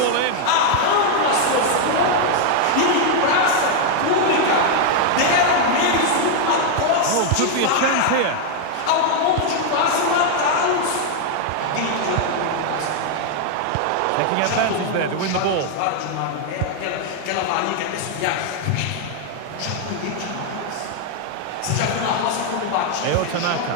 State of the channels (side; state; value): both; different; correlation 0.00